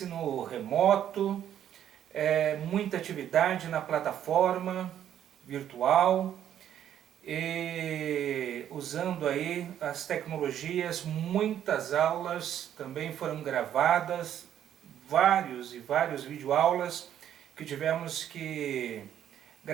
remoto, muita atividade na plataforma virtual, e usando aí as tecnologias, muitas aulas também foram gravadas, vários videoaulas que tivemos que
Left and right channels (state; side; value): quieter; left; 10.4 dB